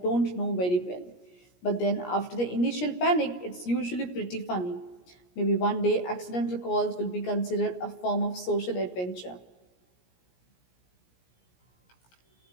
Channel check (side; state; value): right; late; 17 ms